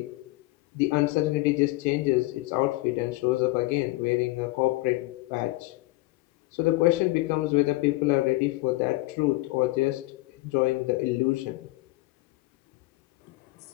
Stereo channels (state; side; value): quieter; right; 20.8 dB